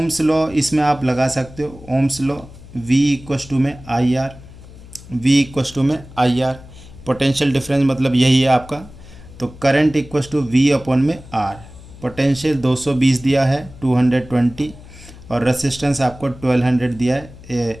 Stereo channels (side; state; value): left; noise; hum, 19 dB below the sound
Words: लॉ इसमें आप लगा सकते हो। Ohm's law, V equals to में आई आर, पोटेंशियल डिफरेंस मतलब यही है आपका। तो current equals to V upon में R। पोटेंशियल 220 दिया है, 220, और रेसिस्टेंस आपको 1200 दिया है।